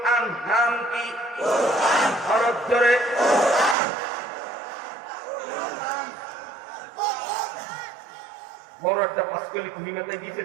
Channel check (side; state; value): left; drops out; at 3.8 s